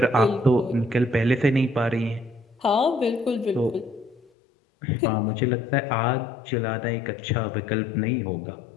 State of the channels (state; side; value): drops out; right; at 4.2 s